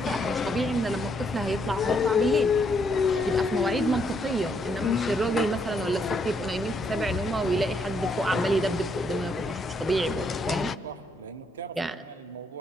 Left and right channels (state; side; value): normal; both; correlation 0.74